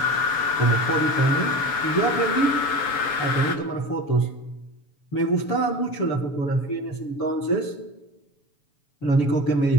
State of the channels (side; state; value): right; late; 7.1 ms